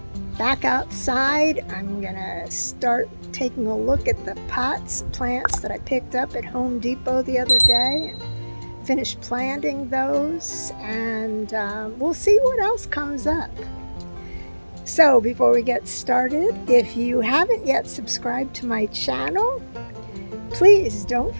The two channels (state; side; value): inverted; both; correlation -1.00